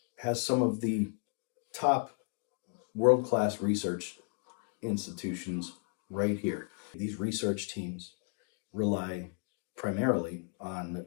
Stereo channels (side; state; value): right; quieter; 39.6 dB